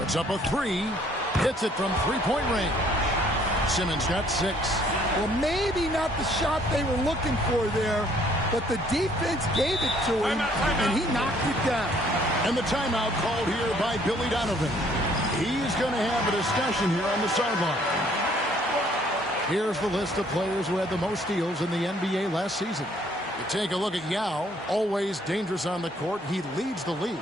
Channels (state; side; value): normal; both; correlation 0.62